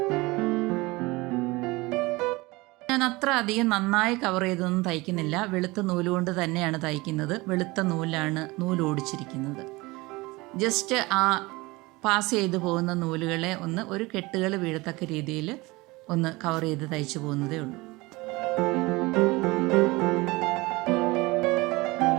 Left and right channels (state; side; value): quieter; left; 22.6 dB